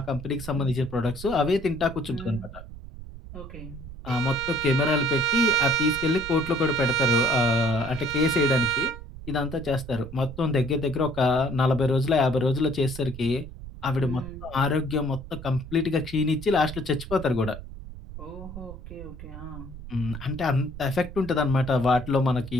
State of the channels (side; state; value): right; noise; rumble, 13 dB below the sound